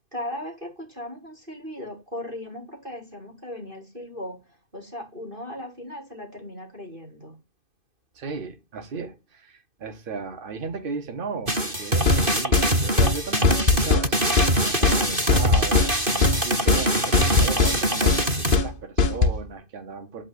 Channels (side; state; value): left; late; 2.5 ms